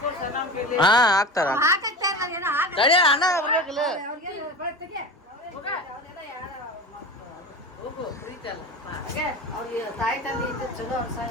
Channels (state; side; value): normal; both; correlation 0.29